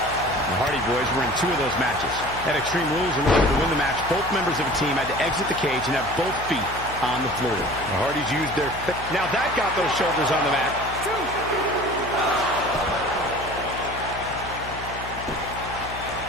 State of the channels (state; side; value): noise; left; hum, 12 dB below the sound